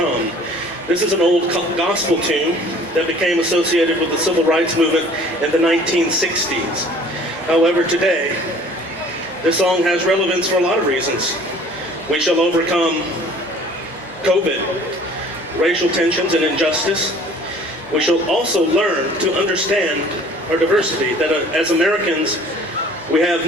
This is an old gospel tune that became associated with the civil rights movement in the 1960s. However, today, this song has relevance for a lot of reasons. We shall overcome COVID, racial tensions and injustice. We shall also learn to understand our diversity, that as Americans, we have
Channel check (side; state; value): both; normal; correlation 0.51